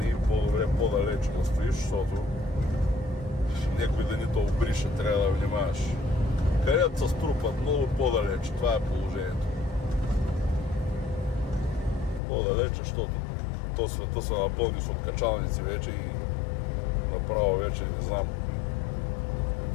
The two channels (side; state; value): right; drops out; at 12.2 s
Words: по-добре по-далече да стоиш, защото някой да ни те обрише, трябва да внимаваш. Където се струпат много по-далече, това е положението. По-далече, защото то света са напълни с откачалници вече и направо вече не знам.